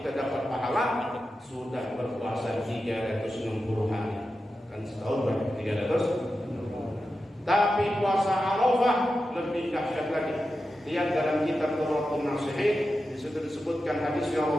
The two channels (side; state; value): both; normal; correlation 0.91